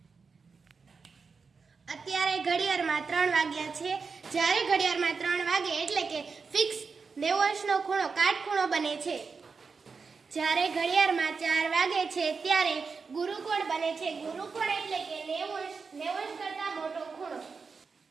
અત્યારે ઘડિયાળમાં 3 વાગ્યા છે। જ્યારે ઘડિયાળમાં 3 વાગે એટલે કે ફિક્સ 90°નો ખૂણો કાટખૂણો બને છે। જ્યારે ઘડિયાળમાં 4 વાગે છે ત્યારે ગુરુકોણ બને છે। ગુરુકોણ એટલે કે 90° કરતા મોટો ખૂણો।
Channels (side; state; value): left; quieter; 5.0 dB